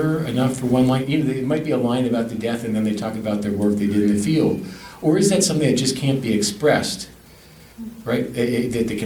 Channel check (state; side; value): identical; both; correlation 1.00